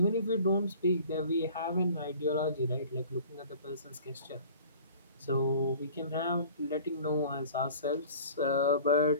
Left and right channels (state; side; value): inverted; both; correlation -0.46